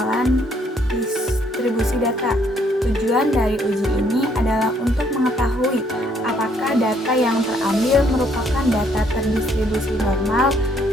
distribusi data. Tujuan dari uji ini adalah untuk mengetahui apakah data yang terambil merupakan data terdistribusi normal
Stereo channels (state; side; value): normal; both; correlation 0.68